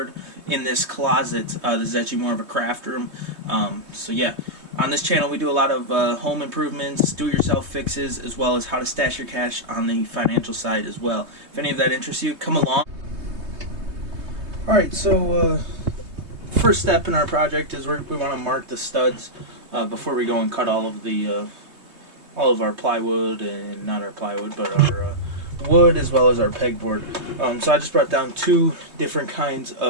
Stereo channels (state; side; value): late; left; 3.2 ms